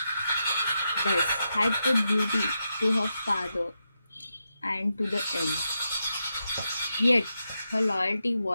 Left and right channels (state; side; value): inverted; both; correlation -0.86